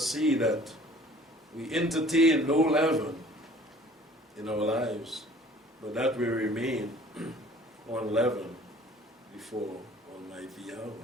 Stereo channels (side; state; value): both; normal; correlation 0.51